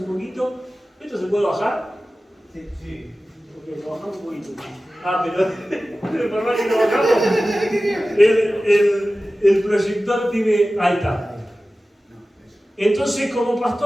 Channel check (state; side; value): normal; both; correlation 0.96